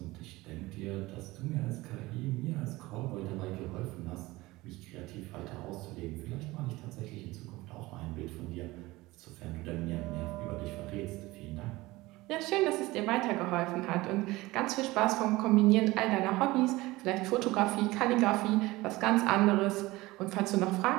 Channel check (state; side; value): quieter; left; 20.0 dB